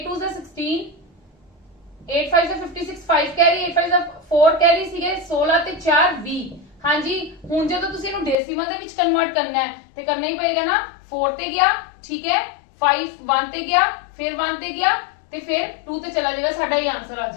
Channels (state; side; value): drops out; right; at 8.3 s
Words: 2 are 16 8 5 are 56 5 carry 8 5 are 4 carry सीगे 16 ते 4 20, हाँ जी। हुण जदों तुसीं इहनूं डेसिमल दे विच कन्वर्ट करना है ते करना ही पएगा ना, 4 ते गया, ठीक है, 5 1 ते गया, फिर 1 ते गया ते फिर 2 ते चला जाएगा, साडा ये आंसर आ